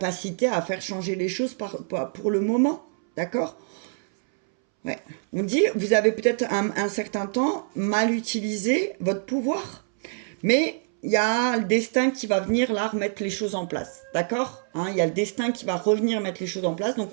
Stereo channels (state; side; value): silent; left; 61 dB below the other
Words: à faire changer les choses pour le moment. D'accord? Ouais. On dit, vous avez peut-être un certain temps mal utilisé votre pouvoir, mais il y a le destin qui va venir là remettre les choses en place, d'accord? Il y a le destin qui va revenir mettre les choses en place,